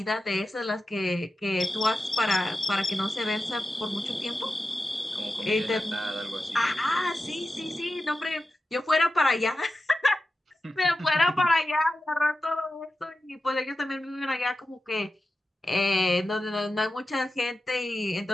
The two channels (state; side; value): normal; both; correlation 0.92